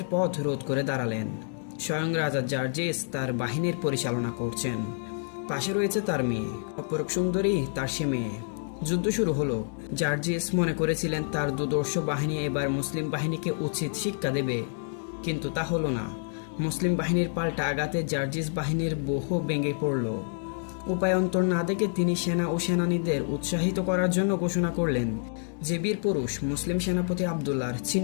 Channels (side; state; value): right; silent; digital silence